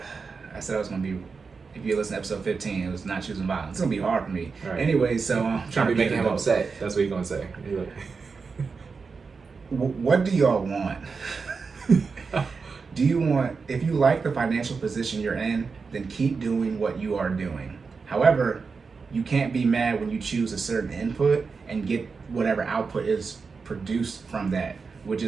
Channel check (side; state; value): left; quieter; 4.9 dB